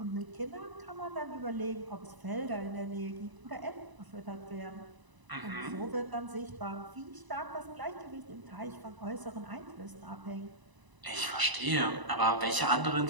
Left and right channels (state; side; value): late; left; 1.0 ms